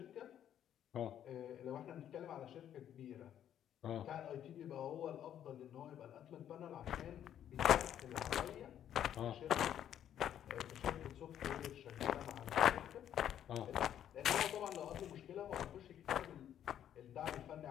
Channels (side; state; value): right; quieter; 10.3 dB